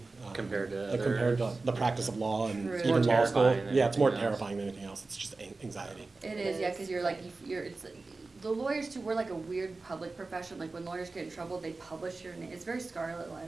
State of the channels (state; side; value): quieter; left; 3.6 dB